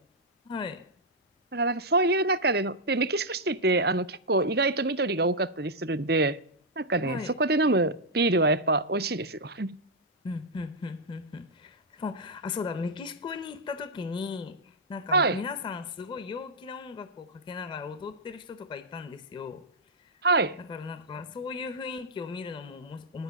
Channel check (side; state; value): both; normal; correlation -0.05